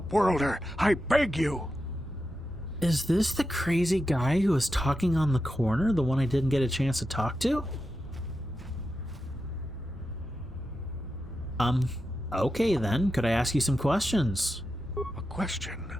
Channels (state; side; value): normal; both; correlation 0.89